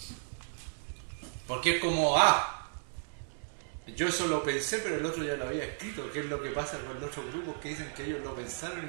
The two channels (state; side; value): silent; left; digital silence